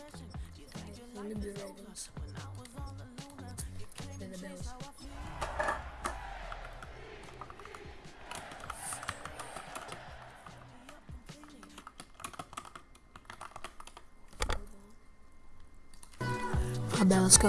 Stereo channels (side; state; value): both; identical; correlation 1.00